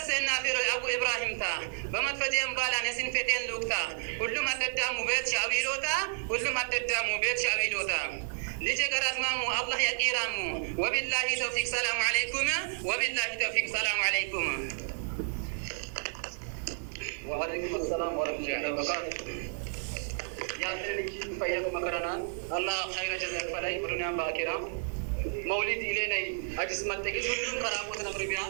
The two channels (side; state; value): left; silent; 57 dB below the other